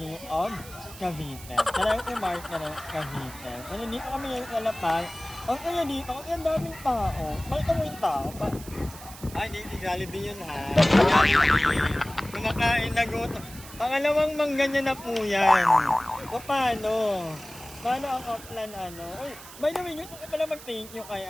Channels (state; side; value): noise; right; hiss, 16 dB below the sound